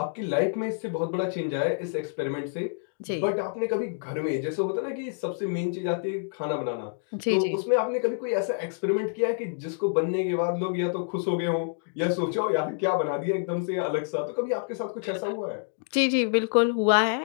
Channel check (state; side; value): silent; right; digital silence